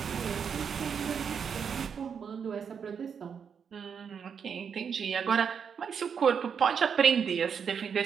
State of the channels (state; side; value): quieter; left; 6.9 dB